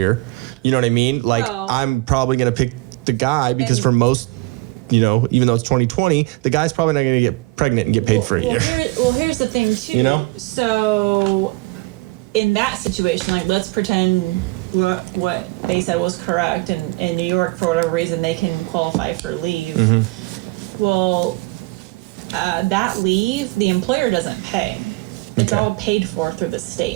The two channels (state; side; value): quieter; left; 22.6 dB